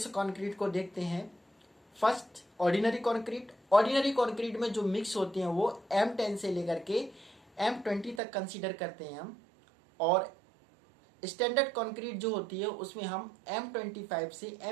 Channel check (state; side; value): drops out; left; at 8.2 s